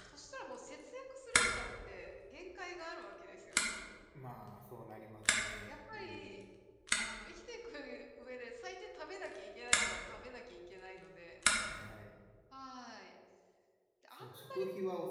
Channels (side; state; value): both; identical; correlation 1.00